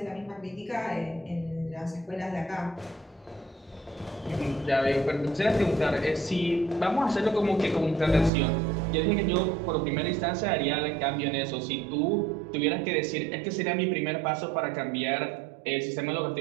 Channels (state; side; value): drops out; left; at 8.3 s